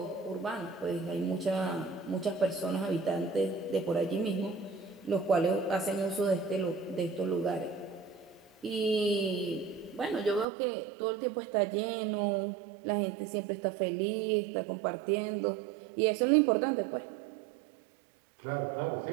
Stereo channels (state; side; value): drops out; left; at 10.5 s